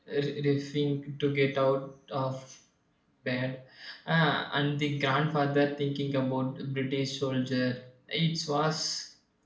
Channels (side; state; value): both; identical; correlation 1.00